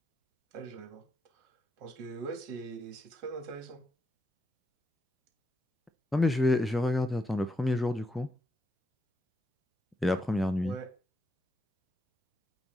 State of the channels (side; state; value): both; normal; correlation 0.83